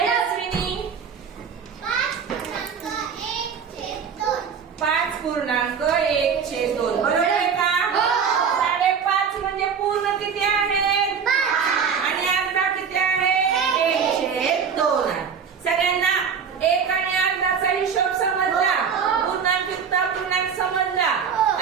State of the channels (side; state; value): left; quieter; 6.7 dB